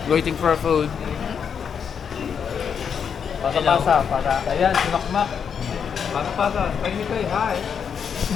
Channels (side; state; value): right; quieter; 7.1 dB